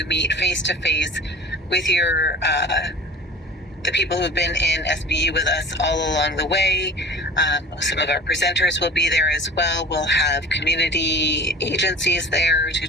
meet face-to-face with your the people who've been in SBU with us all along the way. Some of our presenters will be there as well. We'll have community agencies there to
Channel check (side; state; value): both; normal; correlation 0.39